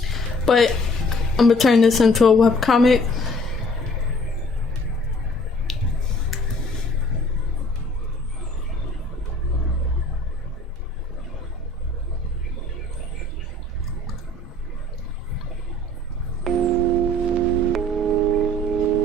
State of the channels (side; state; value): both; normal; correlation 0.55